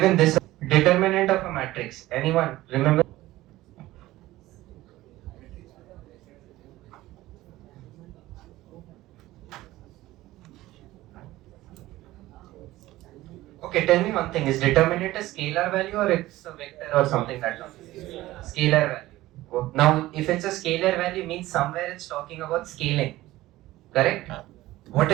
this determinant of a matrix. Anyone remember? Okay, tell me one thing. Is determinant a scalar value or it's a vector or something like that? Scalar value. Now, if it's a scalar value, means somewhere it's talking about scaling. Correct? What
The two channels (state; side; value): quieter; left; 16.8 dB